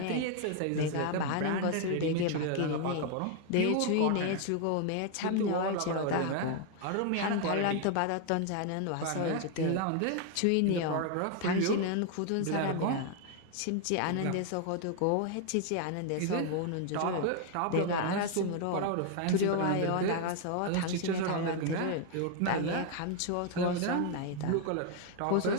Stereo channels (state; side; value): different; both; correlation 0.00